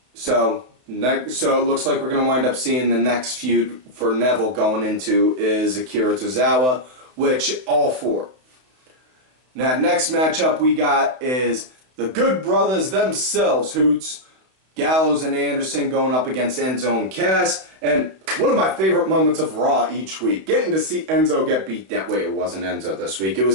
So it looks like we're going to wind up seeing the next feud for Neville going into is Akira Tozawa, which all for. Now, next matchup we got is the Good Brothers themselves, Hoots, Gallows and Anderson going up against Enzo and Cass. And one of my favorite moments of Raw each week, getting to see Enzo get beat down. Wait, it wasn't Enzo this week. It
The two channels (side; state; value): left; late; 31 ms